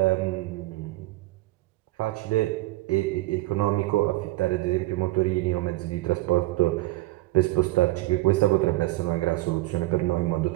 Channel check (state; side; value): quieter; left; 18.9 dB